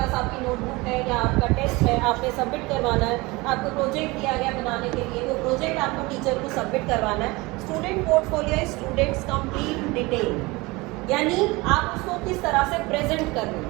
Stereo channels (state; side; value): quieter; left; 23.3 dB